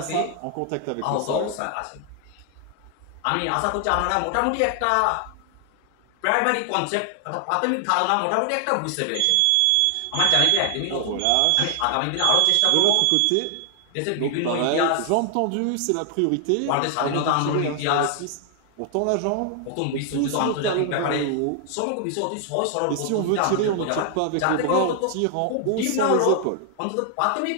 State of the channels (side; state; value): both; different; correlation 0.00